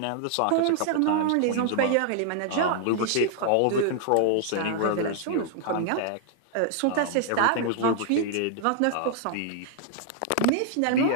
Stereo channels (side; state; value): both; different; correlation -0.01